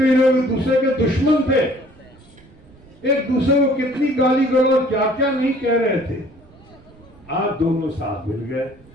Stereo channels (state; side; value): noise; right; rumble, 26 dB below the sound